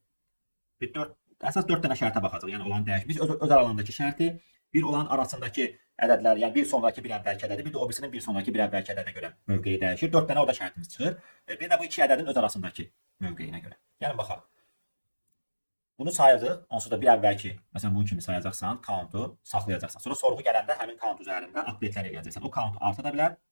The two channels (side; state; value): both; inverted; correlation -1.00